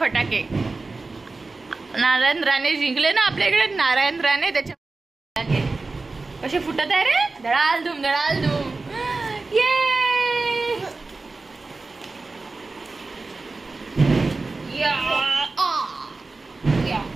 नारायण राणे जिंकले ना आपल्या इकडे. नारायण राणे त्याच्या फटाके कसे फुटत आहे रे. धडाल धूम धडाल धूम. ये या या या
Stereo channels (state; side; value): quieter; left; 3.6 dB